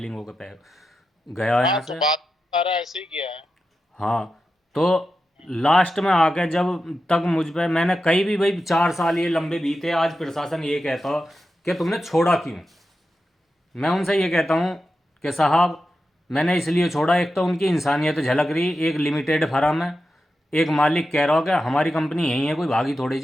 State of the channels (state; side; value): normal; both; correlation 0.90